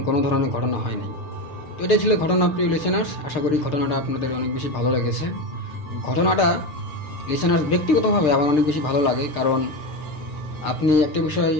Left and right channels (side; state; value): right; late; 6.7 ms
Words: কোনো ধরনের ঘটনা হয়নি। তো এটাই ছিল ঘটনা প্রিয় লিসেনার্স। আশা করি ঘটনাটা আপনাদের অনেক বেশি ভালো লেগেছে। ঘটনাটা লিসেনার্স ব্যক্তিগতভাবে আমার অনেক বেশি ভালো লাগে, কারণ আপনি একটা বিষয়